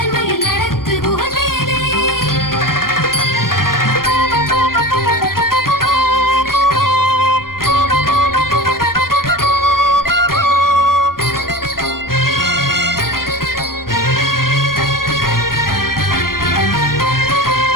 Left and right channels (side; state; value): right; late; 0.91 ms